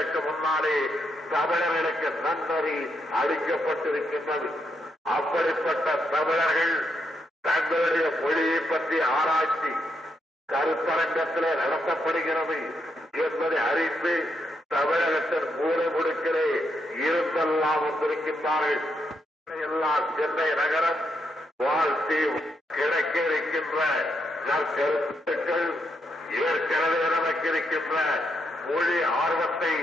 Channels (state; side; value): normal; both; correlation 0.79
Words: முன்னாலே தமிழர்களுக்கு நன்னறி அளிக்கப்பட்டிருக்கின்றது. அப்படிப்பட்ட தமிழர்கள் தங்களுடைய மொழியை பற்றி ஆராய்ச்சி கருத்தரங்கத்திலே நடத்தப்படுகிறது என்பதை அறிந்து தமிழகத்தின் மூலை முடுக்கிலே இருந்தெல்லாம் வந்திருக்கின்றார்கள். எல்லாம் சென்னை நகரம் வாழ்த்தி கிடைக்க இருக்கின்ற நற்கருத்துக்கள் ஏற்கனவே நமக்கு இருக்கின்ற மொழி ஆர்வத்தை